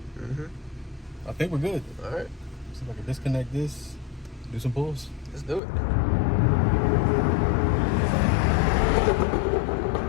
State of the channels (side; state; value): right; drops out; at 5.6 s